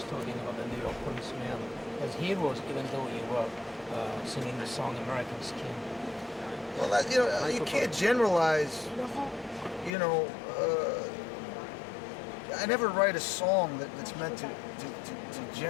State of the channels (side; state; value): right; drops out; at 9.9 s